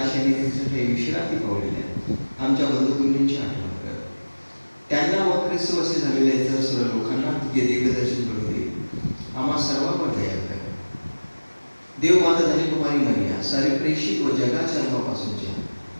त्यांच्यासाठी विश्रांती पावलेल्या आमच्या बंधुकुंडींची आठवण कर. त्यांना व ख्रिस्तवासी झालेल्या इतर सर्व लोकांना तुझे दिव्यदर्शन घडू दे. आम्हा सर्वांवर दया कर. देव माता धनी कुमारी मरिया, सारे प्रेषित व जगाच्या जन्मापासूनच्या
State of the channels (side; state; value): both; inverted; correlation -1.00